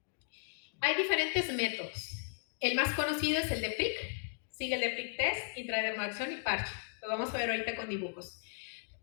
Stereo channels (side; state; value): right; silent; digital silence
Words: Hay diferentes métodos. El más conocido es el de PRIC, sigue el de PRIC test, intradermoacción y parche. Lo vamos a ver ahorita con dibujos.